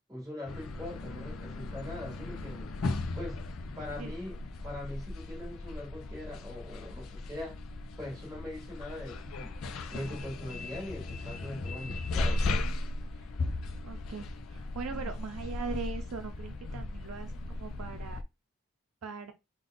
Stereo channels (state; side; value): normal; both; correlation 0.78